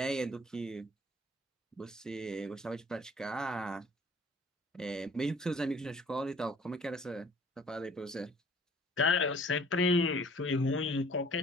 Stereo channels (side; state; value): both; normal; correlation 0.54